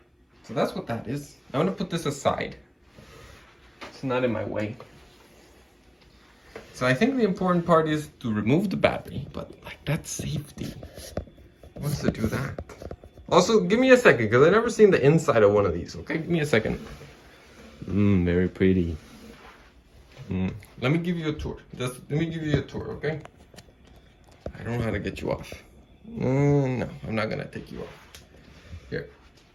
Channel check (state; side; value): identical; both; correlation 1.00